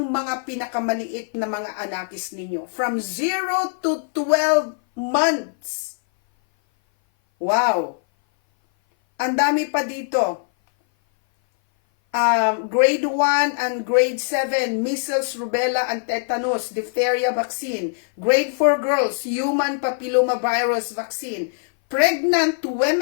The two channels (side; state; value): right; silent; 58 dB below the other